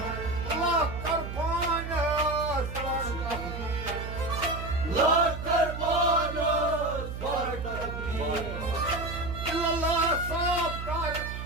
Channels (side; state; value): right; noise; hum, 7 dB below the sound